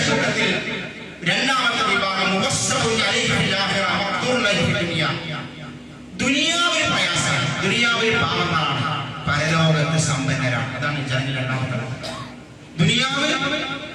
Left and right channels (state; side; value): identical; both; correlation 1.00